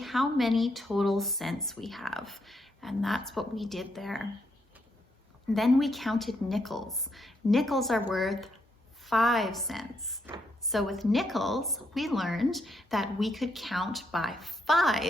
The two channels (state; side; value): normal; both; correlation 0.77